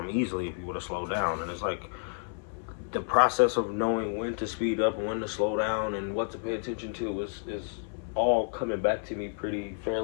easily if you would have slowed down. And it's like, the process of knowing when to speed up and when to slow down and what to pay attention to is all coming back to me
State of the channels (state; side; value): silent; right; 58 dB below the other